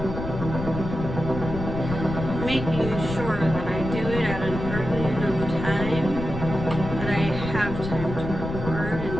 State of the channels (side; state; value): left; noise; rumble, 6 dB below the sound